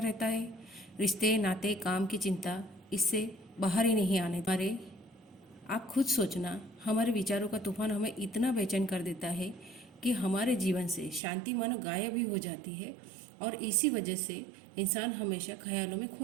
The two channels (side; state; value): left; drops out; at 11.2 s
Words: है। रिश्ते, नाते, काम की चिंता इससे बाहर ही नहीं आने। हमारे आप खुद सोचना, हमारे विचारों का तूफान हमें इतना बेचैन कर देता है कि हमारे जीवन से शांति मानो गायब ही हो जाती है। और इसी वजह से इंसान हमेशा ख्यालों में